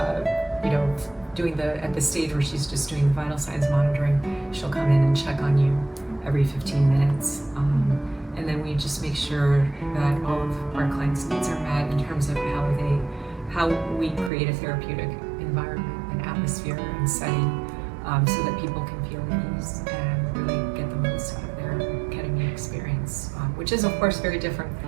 doing at the stage where she's just doing the vital signs monitoring, she'll come in and check on you every 15 minutes. And then we just make sure that all of our clients' needs are met in terms of how we create a therapeutic environment and atmosphere and setting, so that people can feel at ease and really get the most out of their ketamine experience, which is of course very different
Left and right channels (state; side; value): drops out; left; at 14.3 s